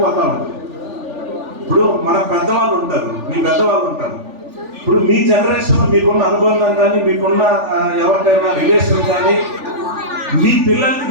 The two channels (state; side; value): late; left; 3.4 ms